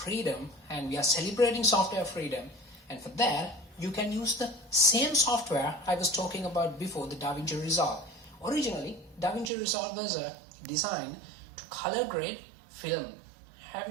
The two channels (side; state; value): left; drops out; at 9.5 s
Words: and we are celebrating software freedom. And for that, you can use the same software I was talking about before, the Davinci Resolve. Originally, Davinci Resolve was designed to color grade film. Have